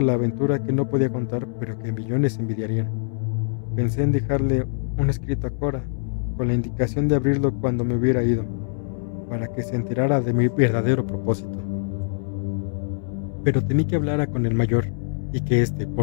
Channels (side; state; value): right; silent; 63 dB below the other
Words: la aventura que no podía contar pero que millones envidiarían. Pensé en dejarle un escrito a Cora, con la indicación de abrirlo cuando me hubiera ido, para que se enterara de mi verdadero propósito. Pero temí que hablara con el mayor, y que éste,